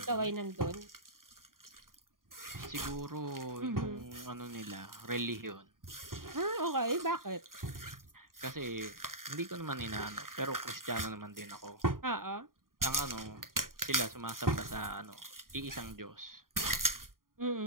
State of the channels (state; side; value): late; left; 0.91 ms